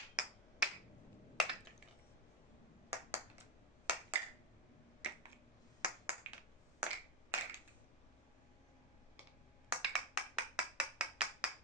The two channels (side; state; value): both; normal; correlation 0.10